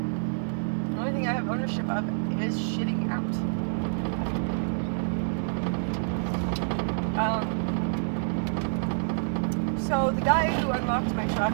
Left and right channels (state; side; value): silent; left; digital silence